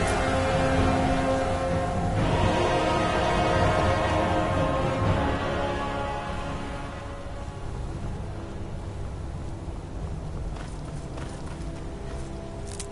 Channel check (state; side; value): identical; both; correlation 1.00